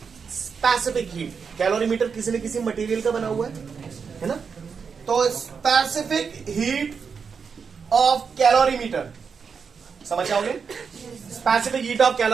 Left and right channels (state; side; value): quieter; left; 5.9 dB